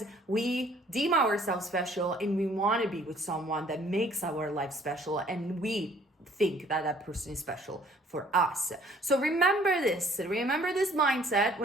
we deem ourselves special and we want to be with someone that makes our life special, and we think that that person is special for us. So remember this mindset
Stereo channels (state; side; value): normal; both; correlation 0.58